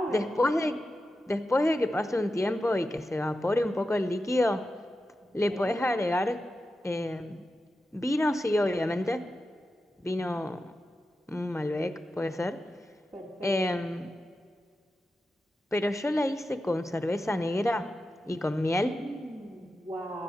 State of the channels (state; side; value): normal; both; correlation 0.91